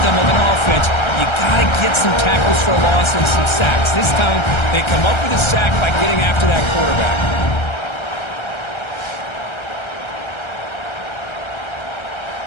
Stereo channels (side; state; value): right; late; 1.3 ms